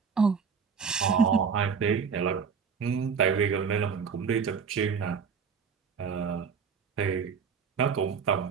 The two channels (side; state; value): left; quieter; 6.2 dB